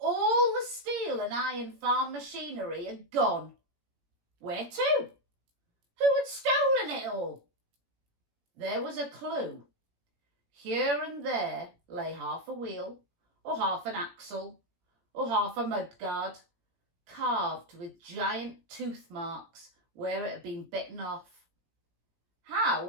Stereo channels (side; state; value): left; late; 17 ms